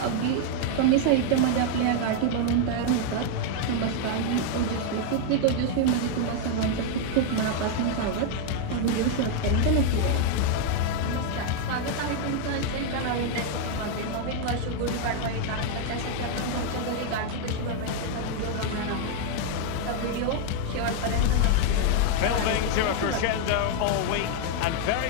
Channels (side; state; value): both; different; correlation 0.00